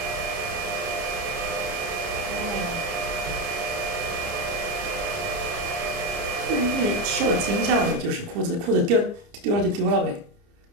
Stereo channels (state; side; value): late; left; 30 ms